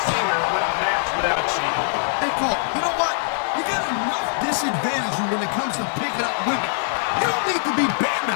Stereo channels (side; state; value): right; silent; digital silence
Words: seen her win a match without cheating. Hey, Cole, you know what? You got enough disadvantage when it comes to picking up women. You don't need to be